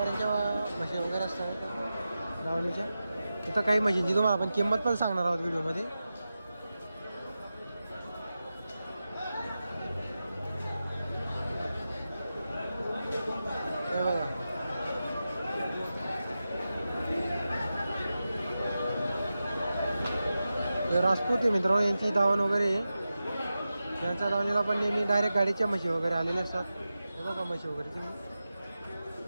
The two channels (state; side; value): inverted; both; correlation -0.92